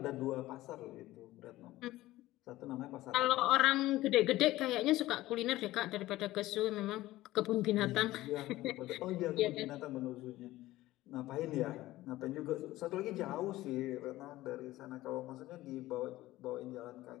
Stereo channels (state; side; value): quieter; right; 16.7 dB